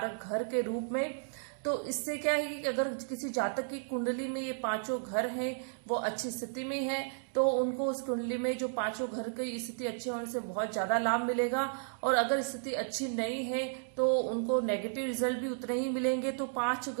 घर के रूप में, तो इससे क्या है कि अगर किसी जातक की कुंडली में ये 5 घर हैं वो अच्छी स्थिति में है तो उनको उस कुंडली में जो 5 घर की स्थिति अच्छी होने से बहुत ज्यादा लाभ मिलेगा और अगर स्थिति अच्छी नहीं है तो उनको नेगेटिव रिजल्ट भी उतने ही मिलेंगे। तो 5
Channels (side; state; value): left; silent; digital silence